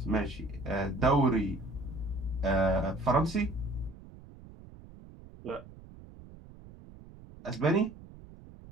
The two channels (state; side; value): noise; right; rumble, 19 dB below the sound